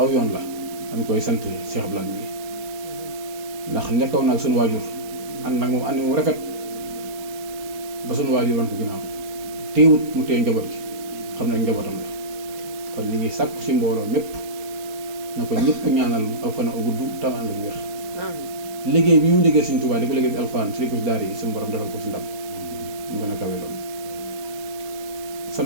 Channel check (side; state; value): left; late; 4.3 ms